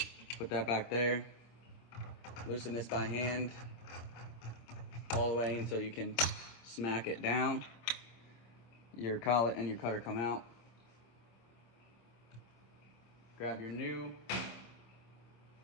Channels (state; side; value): late; right; 26 ms